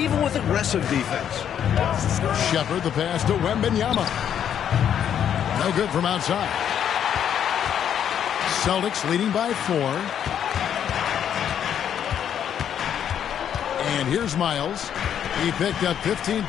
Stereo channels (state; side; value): quieter; right; 9.2 dB